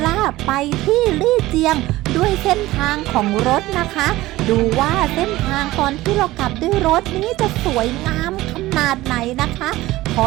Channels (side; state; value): left; quieter; 17.5 dB